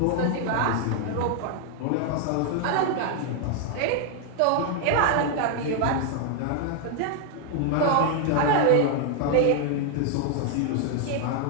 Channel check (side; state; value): both; different; correlation 0.00